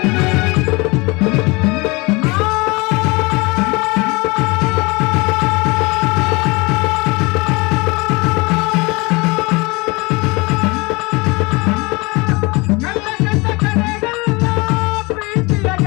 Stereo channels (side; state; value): right; quieter; 25.8 dB